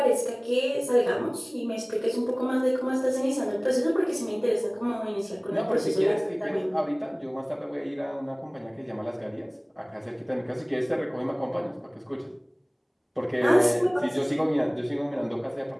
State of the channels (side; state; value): both; identical; correlation 1.00